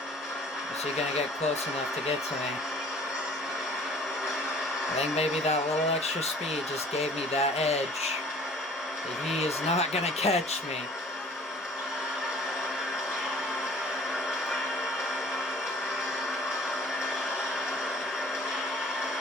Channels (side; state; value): both; normal; correlation 0.51